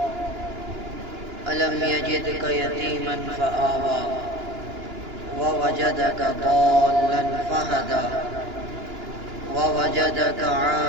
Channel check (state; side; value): late; left; 2.9 ms